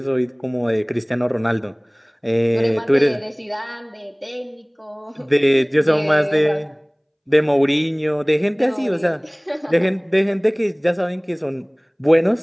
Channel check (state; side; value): identical; both; correlation 1.00